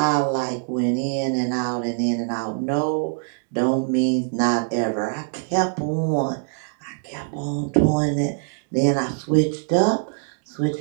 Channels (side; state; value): left; silent; 63 dB below the other